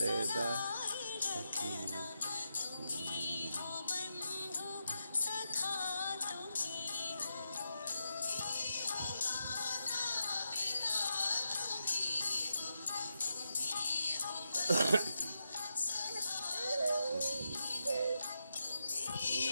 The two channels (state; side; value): inverted; both; correlation -0.86